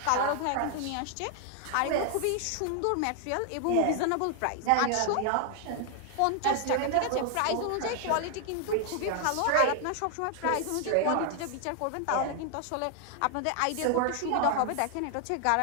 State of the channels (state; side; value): different; both; correlation 0.00